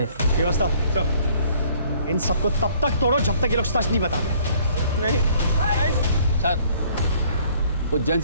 व्यवस्था इन सबको तब तक तोड़ो जब तक ये लोग सच नहीं बताते। नहीं सर, उज्जैन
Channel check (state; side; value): inverted; both; correlation -0.59